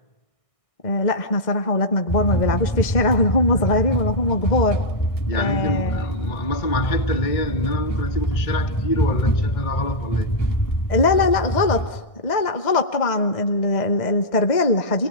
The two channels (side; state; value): right; late; 1.6 ms